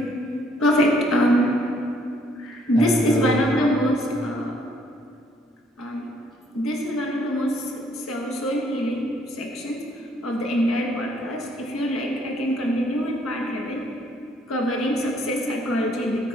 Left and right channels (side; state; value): both; normal; correlation 0.66